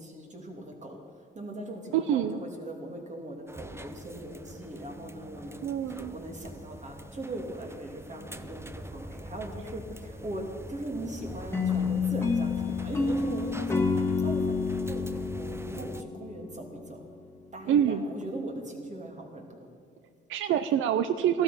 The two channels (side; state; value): both; normal; correlation 0.48